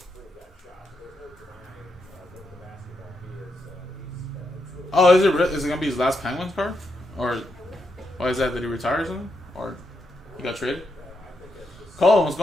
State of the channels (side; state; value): both; normal; correlation 0.82